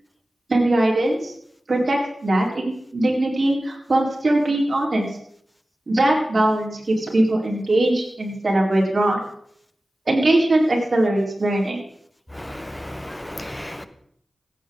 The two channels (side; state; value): both; normal; correlation 0.95